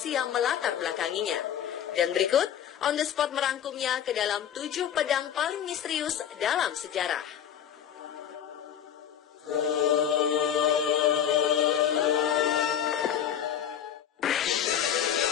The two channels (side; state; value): right; quieter; 9.4 dB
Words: yang melatar belakanginya. Dan berikut, On The Spot merangkumnya ke dalam 7 pedang paling misterius dalam sejarah.